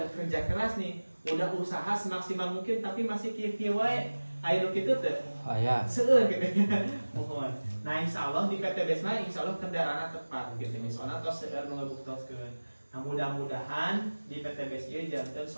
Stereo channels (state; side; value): inverted; both; correlation -1.00